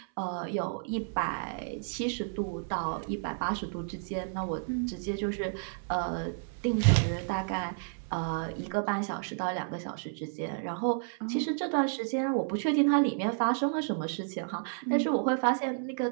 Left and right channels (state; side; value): silent; left; 57 dB below the other